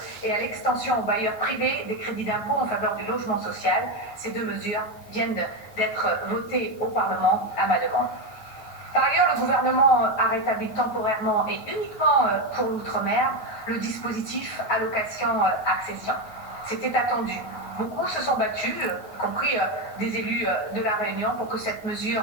et à l'extension aux bailleurs privés des crédits d'impôt en faveur du logement social. Ces 2 mesures viennent d'être votées au Parlement à ma demande. Par ailleurs, le gouvernement a rétabli temporairement et uniquement pour l'outre-mer le dispositif allocation accession. C'était attendu. Beaucoup se sont battus, y compris des élus de La Réunion, pour que cette mesure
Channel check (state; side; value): late; right; 9.3 ms